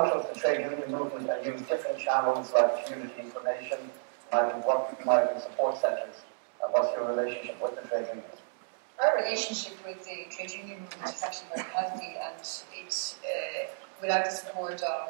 of the trade union movement and use different channels like community information, migrant support centres? And what's your relationship with the trade unions? Our relationship with the trade union movement is actually very healthy, and it's without the support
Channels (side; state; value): left; silent; digital silence